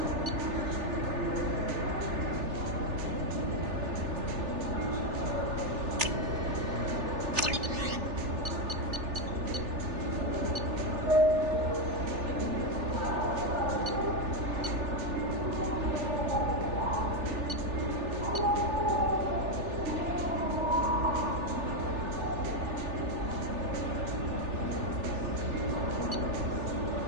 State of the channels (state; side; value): late; left; 3.4 ms